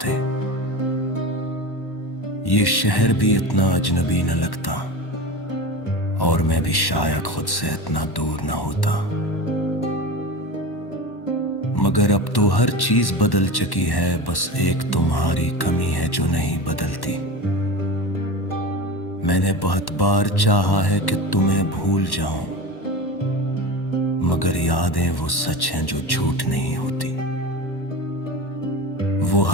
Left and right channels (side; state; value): right; late; 1.1 ms